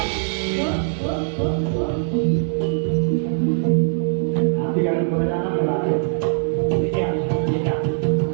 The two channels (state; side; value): silent; left; digital silence